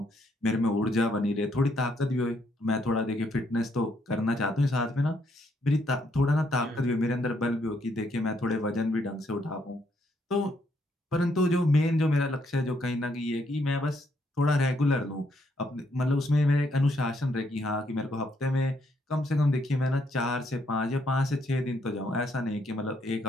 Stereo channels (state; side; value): normal; both; correlation 0.73